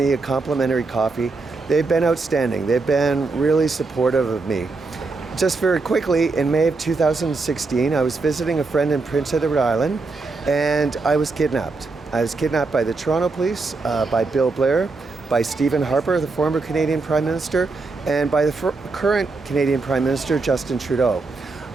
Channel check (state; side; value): quieter; left; 3.8 dB